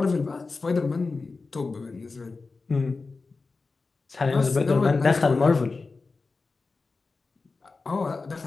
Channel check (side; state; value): right; quieter; 4.0 dB